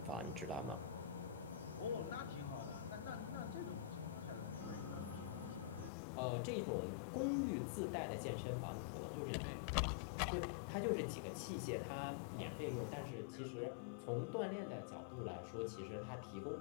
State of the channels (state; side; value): drops out; right; at 5.9 s